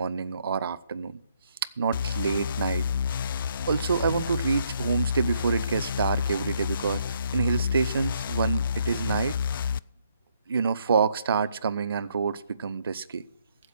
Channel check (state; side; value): inverted; both; correlation -0.71